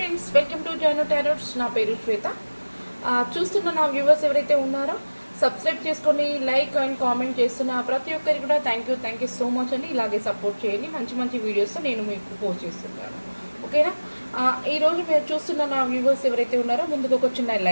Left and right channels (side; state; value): both; inverted; correlation -1.00